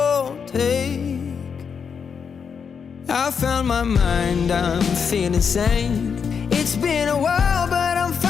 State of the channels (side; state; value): right; quieter; 6.5 dB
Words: take. I found my mind, I'm feeling sane. It's been a while, but I'm